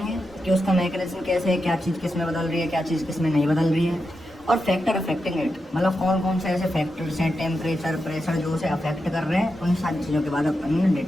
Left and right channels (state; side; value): normal; both; correlation 0.88